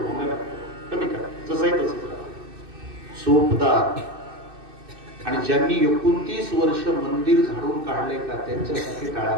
कमी करा, जसंही तसंच सोपदार. आणि ज्यांनी 29 वर्ष मंदिर झाडून काढले का त्यांच्यासाठी टाळ्या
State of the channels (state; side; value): late; left; 2.6 ms